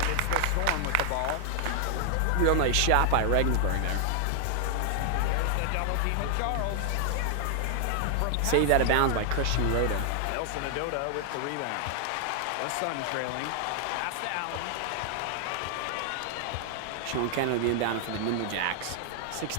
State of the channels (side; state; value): both; different; correlation 0.00